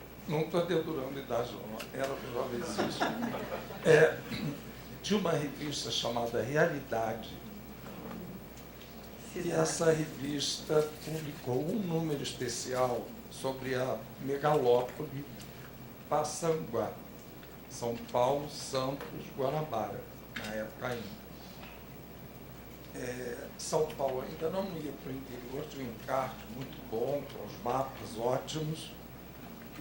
Não estou dedurando a idade, não, era jovenzíssimo. Tinha uma revista chamada Realidade. E essa revista publicou um número especial sobre a megalópole Passanguá, São Paulo, Santos, Guanabara, na época ainda. São Paulo ainda não ia para o interior, tinha um encarte muito bom, com os mapas ótimos, que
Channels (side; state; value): both; identical; correlation 1.00